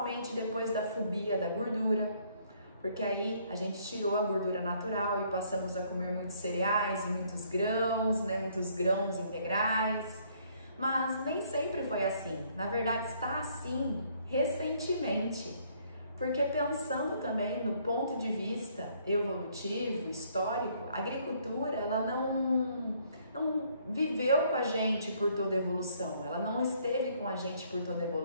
depois da fobia da gordura, porque aí a gente tirou a gordura natural e passamos a comer muitos cereais e muitos grãos integrais, mas nem sempre foi assim. Na verdade está assim recentemente, porque pensando também no ponto de vista evolutivo, histórico, a agricultura ela não viveu com a gente por toda a evolução, ela não esteve com a gente por toda a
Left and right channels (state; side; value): inverted; both; correlation -0.65